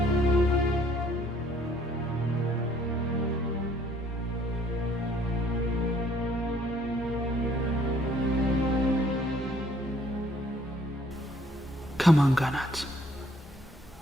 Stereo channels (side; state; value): both; normal; correlation 0.62